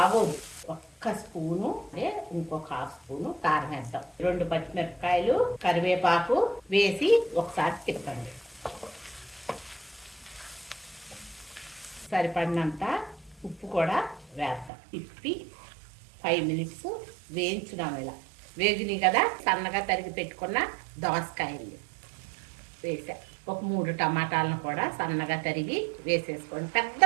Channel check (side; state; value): left; drops out; at 14.7 s